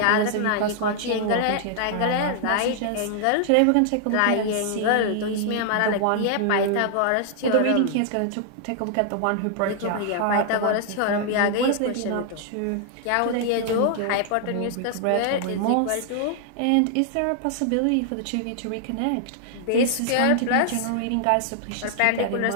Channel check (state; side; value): different; both; correlation 0.00